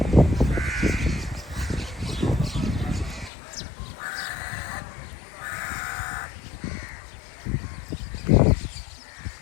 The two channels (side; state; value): right; drops out; at 3.3 s